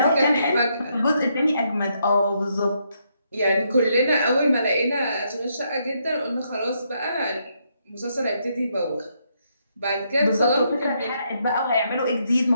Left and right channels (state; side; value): inverted; both; correlation -0.76